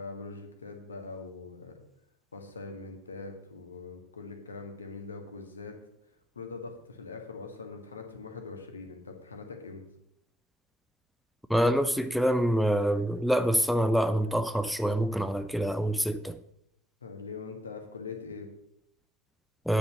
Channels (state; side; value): normal; both; correlation 0.84